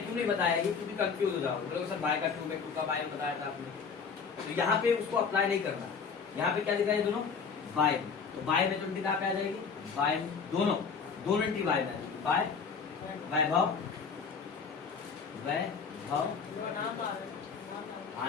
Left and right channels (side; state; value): right; quieter; 5.8 dB